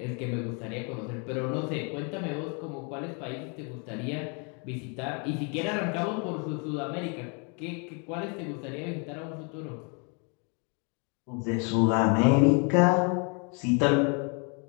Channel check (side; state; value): right; quieter; 36.1 dB